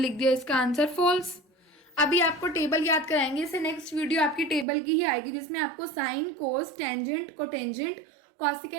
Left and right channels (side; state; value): left; drops out; at 4.7 s